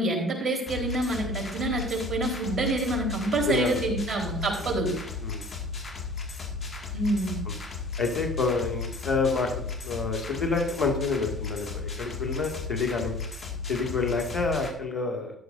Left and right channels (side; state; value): both; normal; correlation 0.46